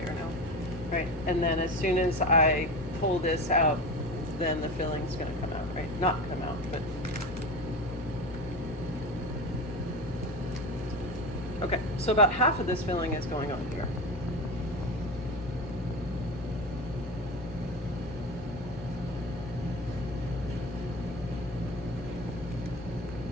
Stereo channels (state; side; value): normal; both; correlation 0.27